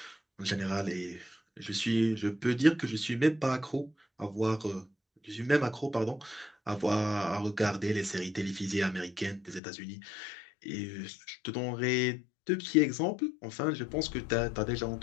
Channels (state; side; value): drops out; right; at 9.6 s